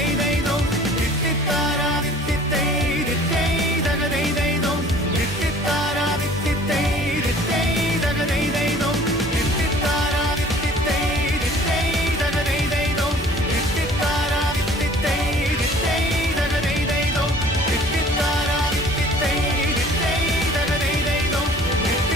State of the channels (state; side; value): normal; both; correlation 0.50